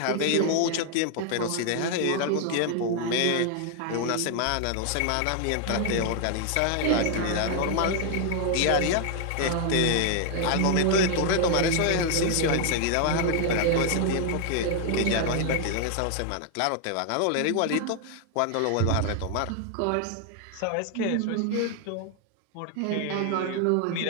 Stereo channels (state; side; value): different; both; correlation 0.00